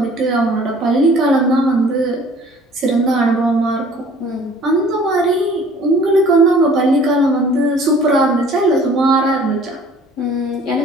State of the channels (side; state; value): both; normal; correlation 0.52